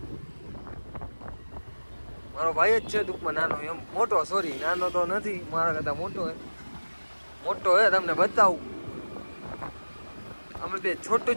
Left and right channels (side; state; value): both; inverted; correlation -1.00